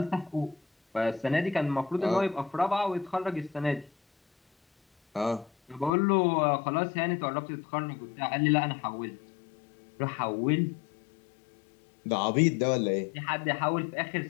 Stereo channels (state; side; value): drops out; right; at 5.9 s